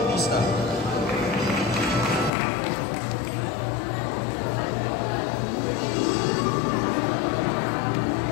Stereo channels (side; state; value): right; drops out; at 2.3 s